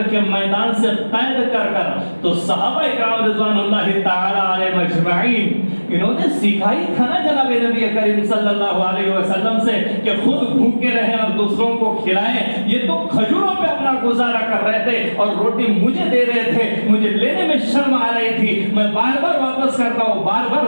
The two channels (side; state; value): both; inverted; correlation -1.00